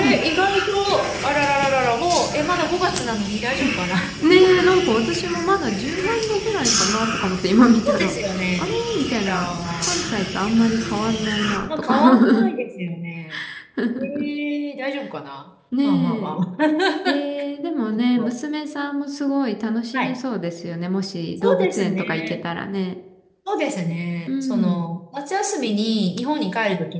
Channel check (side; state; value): both; identical; correlation 1.00